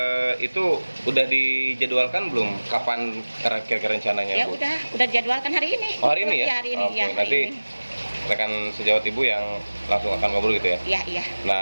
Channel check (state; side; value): inverted; both; correlation -1.00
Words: itu udah dijadwalkan belum? Kapan kira-kira rencananya, Ya Bu? udah jadwalkan hari ini. Oh, hari ini ya? Iya, hari ini. Oke, Ya, hari nanti ini. rekan sejawat Ibu yang langsung akan ngobrol gitu ya? Iya, iya.